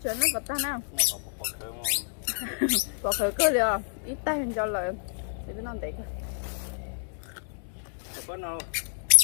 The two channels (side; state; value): right; silent; digital silence